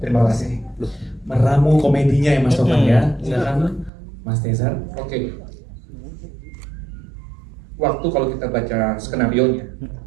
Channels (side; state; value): left; drops out; at 3.9 s